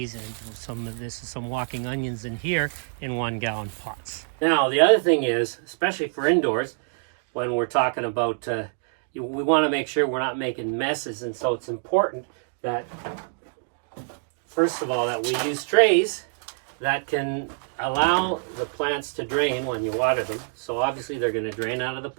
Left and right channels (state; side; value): silent; left; 61 dB below the other